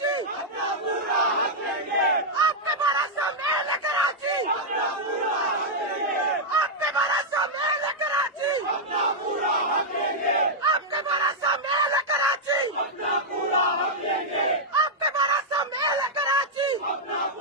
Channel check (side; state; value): both; normal; correlation -0.05